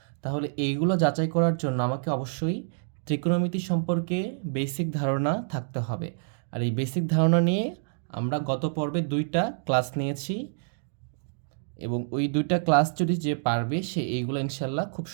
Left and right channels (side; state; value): left; silent; digital silence